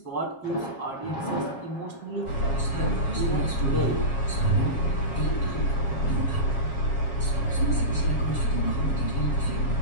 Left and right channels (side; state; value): right; late; 7.3 ms